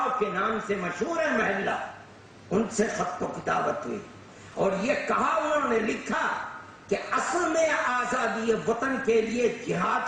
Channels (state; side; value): identical; both; correlation 1.00